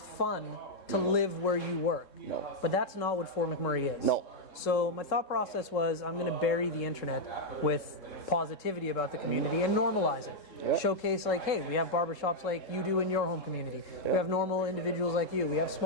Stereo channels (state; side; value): late; right; 3.7 ms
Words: fun to live where you work. No. But that's not what Fort McMurray is. No. So my thought process was I'm going to bury the internet with positivity about the community and normalize it. Yeah. Showcase like, hey, we have barbershops like you do in your home community. We have normal individuals like you. We have